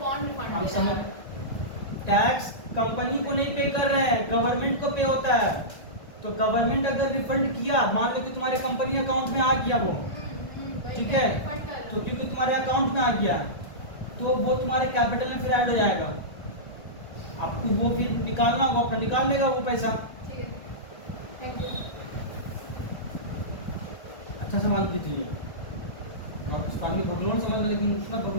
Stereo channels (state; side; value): late; right; 1.9 ms